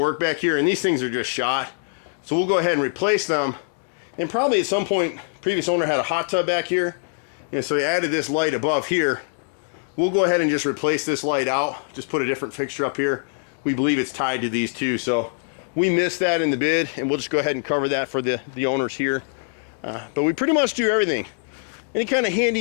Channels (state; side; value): silent; right; digital silence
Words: back here, and these things are just shot. So we'll go ahead and replace them. And probably at some point, previous owner had a hot tub back here, and so he added this light above here. We'll go ahead and just replace this light out, just put a different fixture up here. We believe it's tied to these two, so we missed that in the bid, and we'll just go ahead and cover that for the owners here. But we pretty much do everything. Any kind of